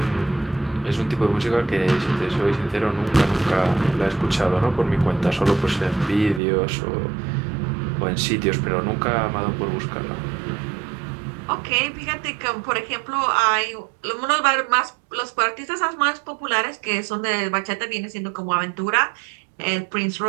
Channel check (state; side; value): drops out; left; at 6.4 s